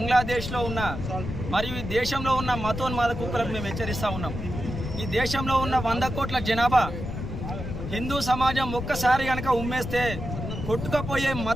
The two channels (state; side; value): noise; left; rumble, 6 dB below the sound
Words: ఉన్న మరియు ఈ దేశంలో ఉన్న మతోన్మాద కుక్కలకు మేము హెచ్చరిస్తూ ఉన్నాం. ఈ దేశంలో ఉన్న 100 కోట్ల జనాభా హిందూ సమాజం ఒక్కసారి కనుక ఉమ్మేస్తే కొట్టుకపోయే